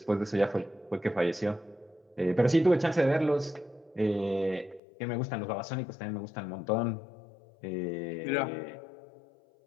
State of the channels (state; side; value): drops out; right; at 4.8 s